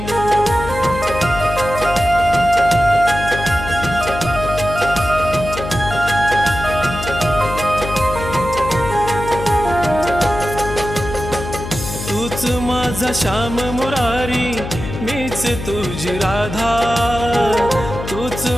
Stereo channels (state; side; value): noise; left; hum, 8 dB below the sound